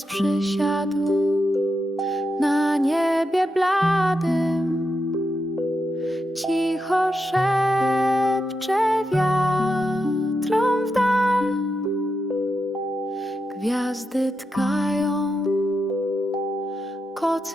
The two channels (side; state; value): both; normal; correlation 0.86